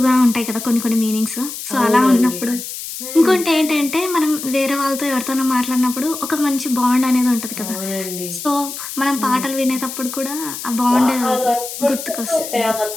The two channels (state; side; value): noise; left; hiss, 9 dB below the sound